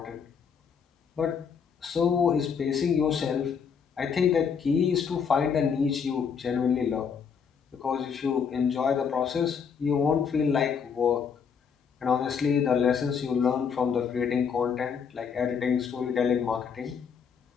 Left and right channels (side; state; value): right; quieter; 6.6 dB